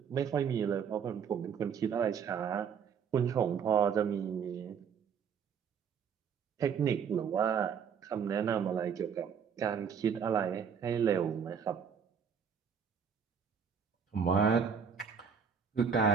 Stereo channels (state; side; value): quieter; left; 7.0 dB